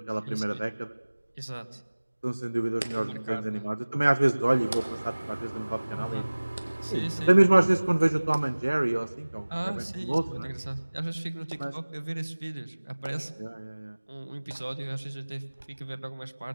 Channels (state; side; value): inverted; both; correlation -1.00